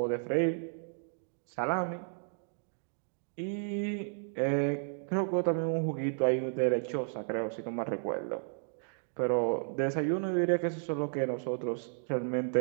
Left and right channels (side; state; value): left; silent; digital silence